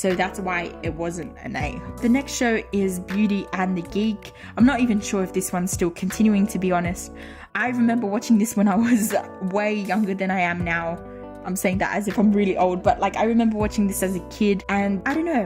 that's why it wasn't an A. The next show is Beauty and the Geek. I'm not even sure if this one's still continuing, to be honest. I remember watching this when I was way younger than I am now. I'm saying that as if I'm really old, but like I remember watching this as a kid, and I don't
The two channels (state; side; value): identical; both; correlation 1.00